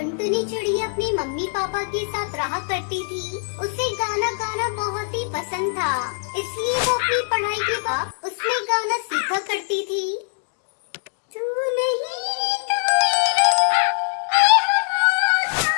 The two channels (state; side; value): silent; right; digital silence